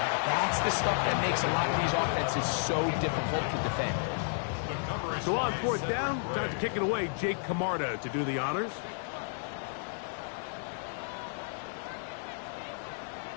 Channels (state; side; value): silent; right; digital silence